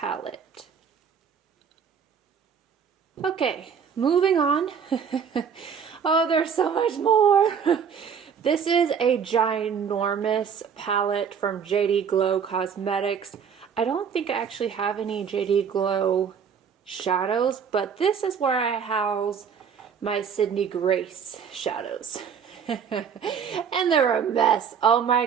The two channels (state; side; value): quieter; left; 7.0 dB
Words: Okay, moving on. Oh, there's so much more. This is a ginormous palette from JD Glow Cosmetics. I don't think I actually have any JD Glow shadows, but this is where I house my Sydney Grace shadows. And they're a mess. Oh my